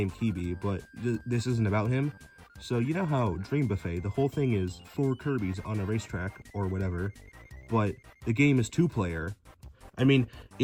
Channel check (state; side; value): identical; both; correlation 1.00